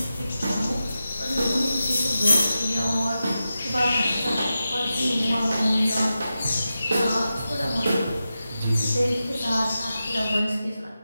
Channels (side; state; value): both; inverted; correlation -0.92